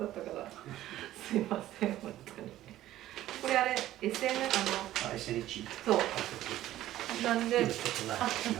ったから、すいません、本当に。これあれ、SN、そう。なんで、じ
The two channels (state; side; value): quieter; left; 14.0 dB